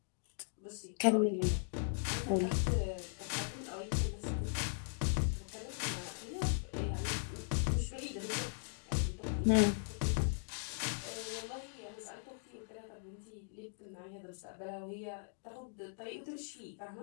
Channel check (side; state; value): right; silent; digital silence